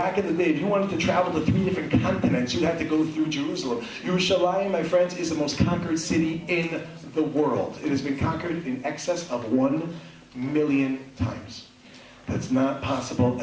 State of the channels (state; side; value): identical; both; correlation 1.00